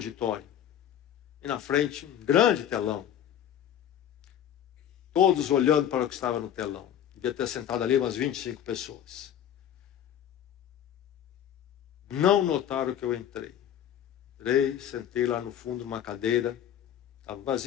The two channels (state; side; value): quieter; right; 10.2 dB